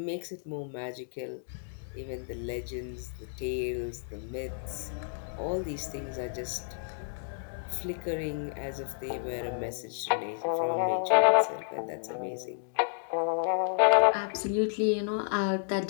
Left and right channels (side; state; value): right; silent; digital silence